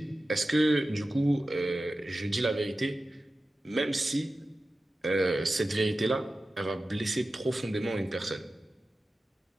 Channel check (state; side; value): normal; both; correlation 0.94